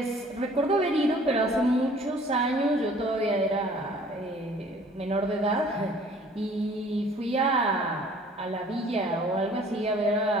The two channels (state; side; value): normal; both; correlation 0.53